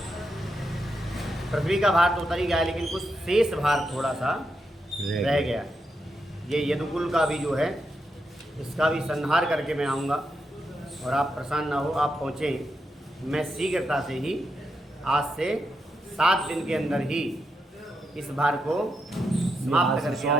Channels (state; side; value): normal; both; correlation 0.84